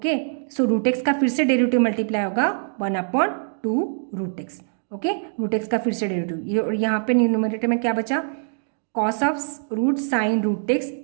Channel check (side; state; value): left; silent; digital silence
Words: सो रूट एक्स का फिर से डेरिवेटिव मल्टीप्लाई होगा 1 upon 2 root x, okay root x का फिर से डेरिवेटिव ये, और यहाँ पे न्यूमरेटर में क्या बचा cos of root sine root x